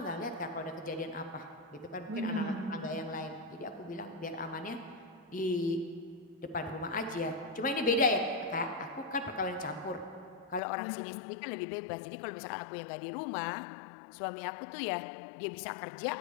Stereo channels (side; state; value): right; drops out; at 10.6 s